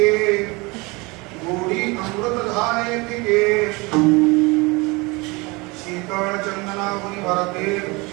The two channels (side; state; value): left; quieter; 25.5 dB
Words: गोडी अमृत धारे तिके शीतल चंदना मुनि भरते